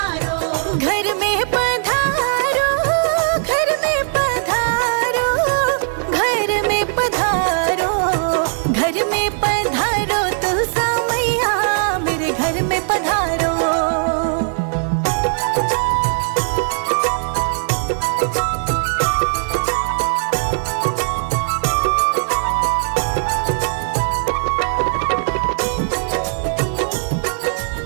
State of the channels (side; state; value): left; silent; 56 dB below the other